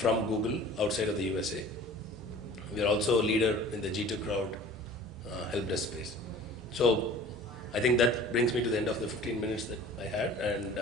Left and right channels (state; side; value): normal; both; correlation 0.44